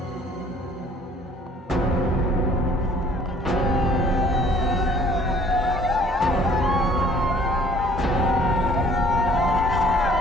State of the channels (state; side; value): normal; both; correlation 0.56